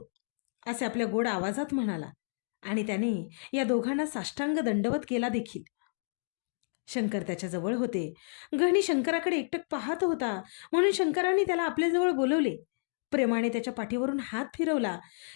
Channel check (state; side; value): silent; right; digital silence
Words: असे आपल्या गोड आवाजात म्हणाला. आणि त्याने या दोघांना साष्टांग दंडवत केला देखील. शंकर त्याच्याजवळ होते. गहणी शंकराकडे एकटक पाहत होता, म्हणून शंकराने त्याला आपल्याजवळ बोलवले. प्रेमाने त्याच्या पाठीवरून हात फिरवला.